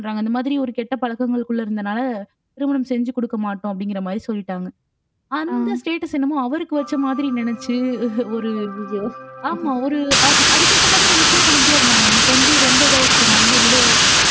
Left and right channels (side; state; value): both; identical; correlation 1.00